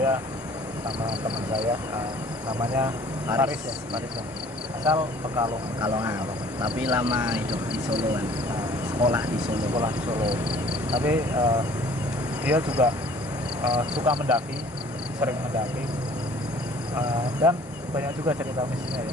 sama teman saya, namanya Faris ya, Faris ya. Asal Pekalongan. Pekalongan, tapi lama hidup di Solo kan, Nah, sekolah di Solo. sekolah di Solo. Tapi dia juga suka mendaki, sering mendaki, dan banyak juga cerita mistisnya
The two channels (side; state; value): both; normal; correlation 0.53